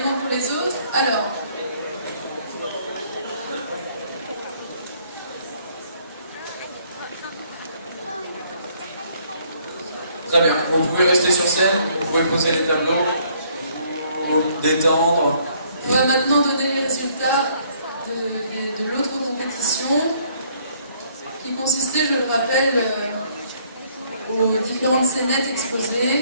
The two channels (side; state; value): both; inverted; correlation -0.64